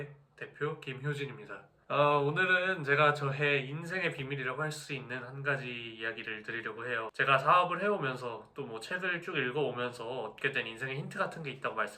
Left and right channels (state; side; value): identical; both; correlation 1.00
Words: 대표 김효진입니다. 오늘은 제가 저의 인생의 비밀이라고 할 수 있는 한 가지 이야기를 드리려고 해요. 제가 사업을 해오면서 또 뭐 책을 쭉 읽어오면서 얻게 된 인생의 힌트 같은 게 있다고